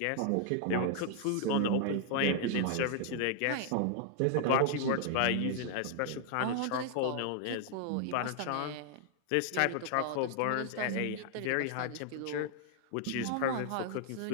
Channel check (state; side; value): different; both; correlation 0.00